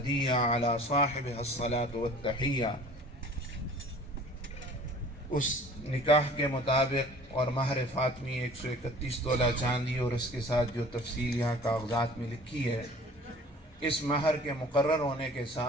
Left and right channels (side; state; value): both; normal; correlation 0.48